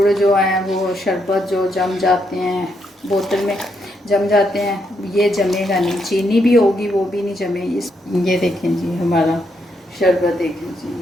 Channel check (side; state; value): both; normal; correlation 0.78